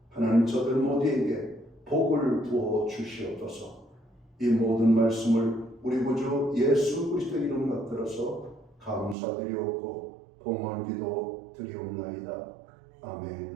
하나님 저들 모두에게 복을 부어 주시옵소서. 이 모든 말씀을 우리 구주 예수 그리스도 이름 받들어서 감사드리옵고 봉헌기도 드리옵나이다.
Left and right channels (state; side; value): drops out; left; at 9.2 s